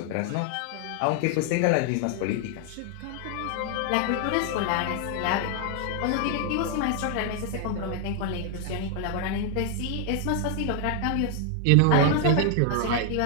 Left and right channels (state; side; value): different; both; correlation 0.00